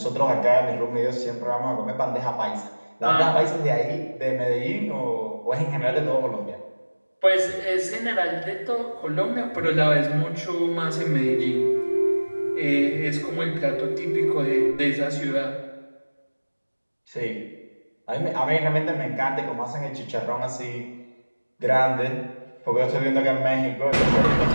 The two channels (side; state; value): both; inverted; correlation -1.00